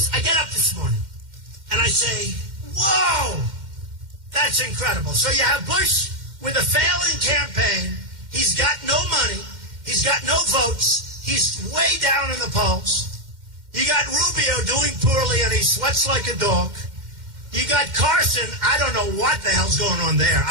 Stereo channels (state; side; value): late; left; 2.1 ms